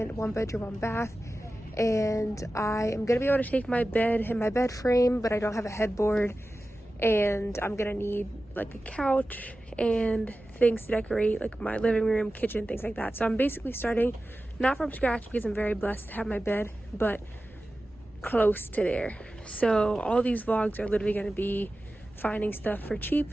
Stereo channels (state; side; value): normal; both; correlation 0.94